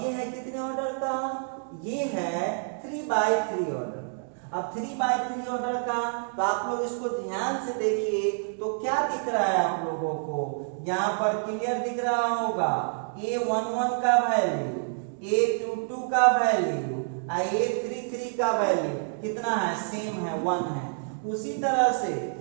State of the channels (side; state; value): left; silent; digital silence